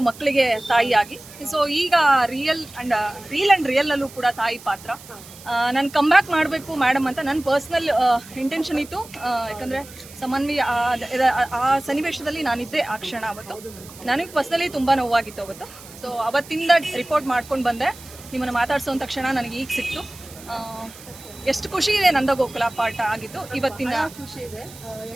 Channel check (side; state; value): right; noise; hiss, 19 dB below the sound